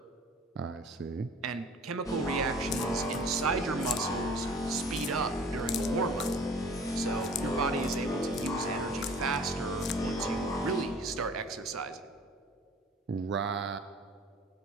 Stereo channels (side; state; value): both; normal; correlation 0.48